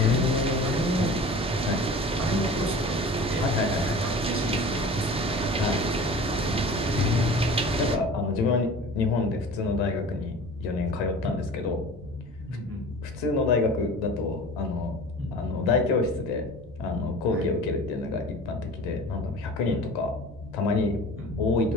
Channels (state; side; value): normal; both; correlation 0.39